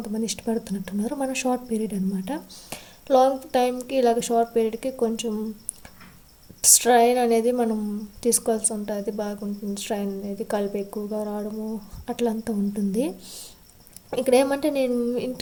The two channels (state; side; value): identical; both; correlation 1.00